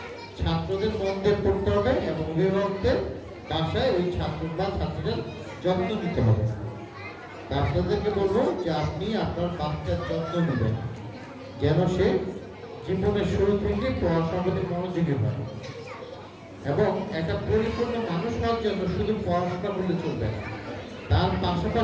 ছাত্রদের মন দিয়ে পড়তে হবে, এবং অভিভাবকদের বাসায় ওই ছাত্র বা ছাত্রীদের যত্ন নিতে হবে। আপনাদেরকে বলবো যে আপনি আপনার বাচ্চার যত্ন নেবেন, যেন সে জীবনের শুরু থেকে পড়াশোনার প্রতি মনোযোগী হয়, এবং একটা পরিপূর্ণ মানুষ হওয়ার জন্য শুধু পড়াশোনা করলে চলবে না, তার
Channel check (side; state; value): both; identical; correlation 1.00